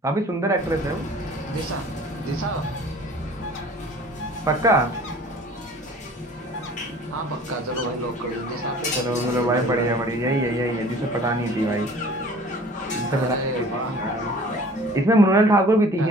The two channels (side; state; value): both; normal; correlation 0.48